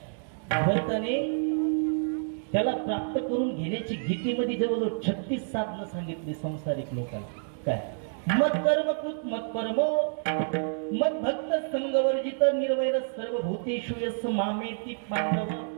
भगवंताने त्याला प्राप्त करून घेण्याची गीतेमध्ये जवळजवळ 36 साधनं सांगितली संसारिक लोकांना। काय मत कर्म कृत मत परमो मत भक्त संगवर्जित निर्वैर सर्व भूतेषु यस्य मामेति पांडव।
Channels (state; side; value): silent; left; digital silence